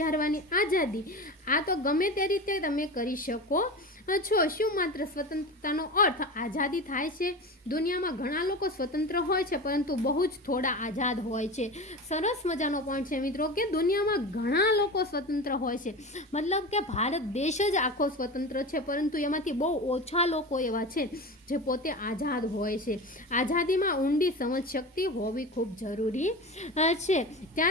આઝાદી. આ તો ગમે તે રીતે તમે કરી શકો છો. શું માત્ર સ્વતંત્રતાનો અર્થ આઝાદી થાય છે? દુનિયામાં ઘણા લોકો સ્વતંત્ર હોય છે પરંતુ બહુ જ થોડા આઝાદ હોય છે. સરસ મજાનો પોઈન્ટ છે મિત્રો કે દુનિયામાં ઘણા લોકો સ્વતંત્ર હોય છે, મતલબ કે ભારત દેશ જ આખો સ્વતંત્ર છે, પરંતુ એમાંથી બહુ ઓછા લોકો એવા છે જે પોતે આઝાદ હોય છે. આઝાદીમાં ઊંડી સમજ શક્તિ હોવી ખૂબ જરૂરી છે.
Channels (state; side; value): normal; both; correlation 0.28